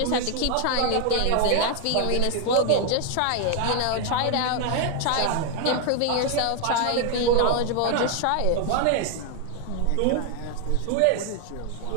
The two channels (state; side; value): different; both; correlation 0.00